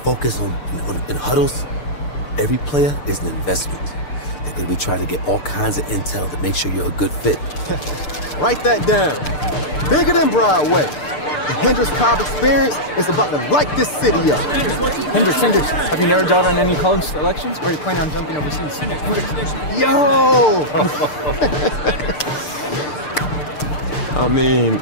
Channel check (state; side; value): late; right; 6.7 ms